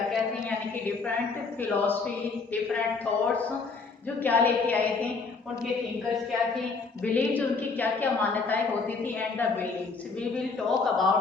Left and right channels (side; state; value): right; quieter; 4.5 dB